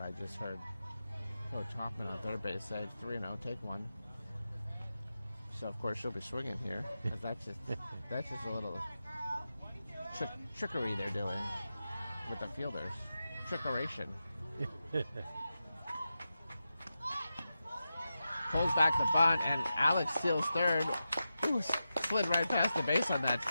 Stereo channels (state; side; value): inverted; both; correlation -0.91